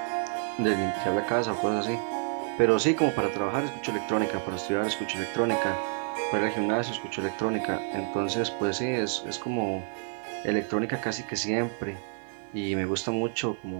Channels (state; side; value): silent; left; 55 dB below the other